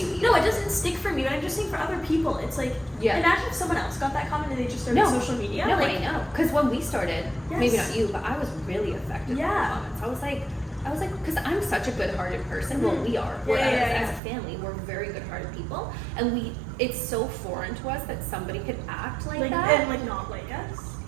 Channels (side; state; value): left; drops out; at 14.2 s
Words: you either. no, it doesn't stick for me. But I'm just saying for other people, it's like Yeah. imagine if someone else got that comment and they just started social media. No, like, I know. Because when we started, Yes. maybe not you, but I was really affected by Yeah. the comments. I was like, because I'm such a good-hearted person. Well, we are. Yeah, We're, yeah, as a family, we're very good-hearted people, and it's so foreign to us that somebody could act like that. and like not like us.